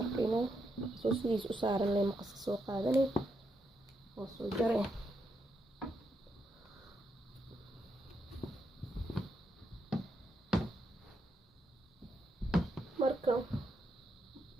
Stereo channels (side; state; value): both; normal; correlation 0.81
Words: arkaynaa soo sidiis u saaran leh maqaska soo qaadanay oo soo jaray. marka